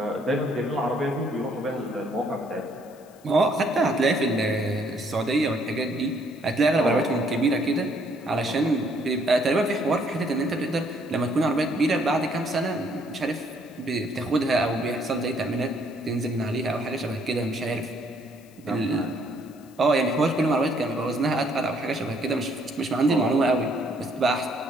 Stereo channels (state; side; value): noise; left; hiss, 28 dB below the sound